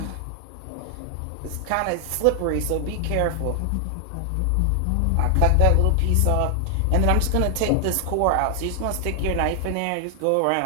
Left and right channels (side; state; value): both; different; correlation 0.00